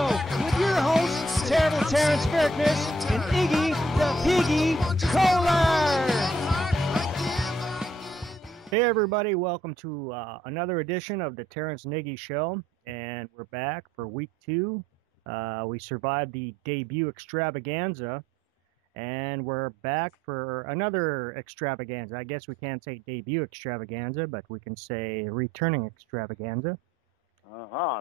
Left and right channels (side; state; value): both; normal; correlation 0.66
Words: with your hosts, Terrible Terrance Berkness and Iggy the Piggy Kohler. Hey everybody, welcome to another edition of the Terrance and Iggy Show, and we're back for week 2. We survived the debut extravaganza, and we're back for another extravaganza. I guess we can't say debut extravaganza, but we can say returning extravaganza.